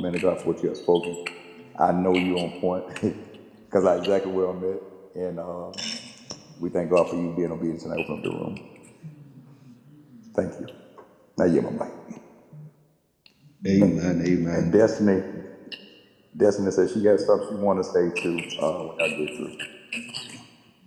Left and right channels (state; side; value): identical; both; correlation 1.00